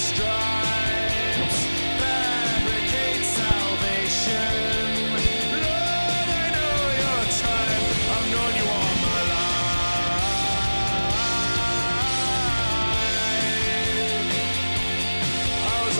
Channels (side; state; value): both; inverted; correlation -1.00